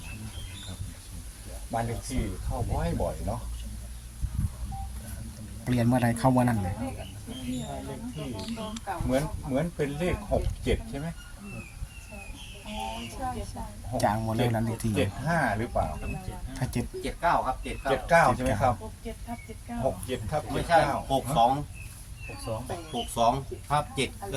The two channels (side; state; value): both; identical; correlation 1.00